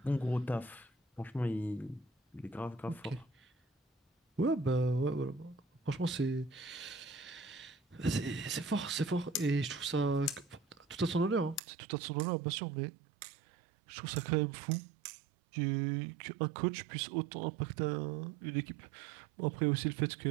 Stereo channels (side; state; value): left; drops out; at 11.6 s